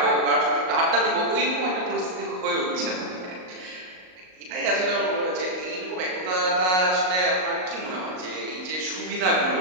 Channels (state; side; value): late; left; 38 ms